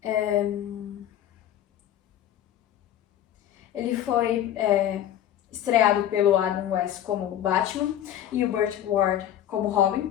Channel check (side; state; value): right; quieter; 11.3 dB